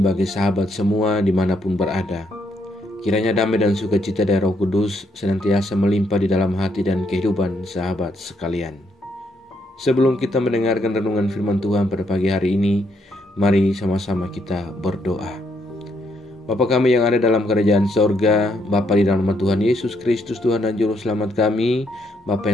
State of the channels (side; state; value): both; normal; correlation 0.74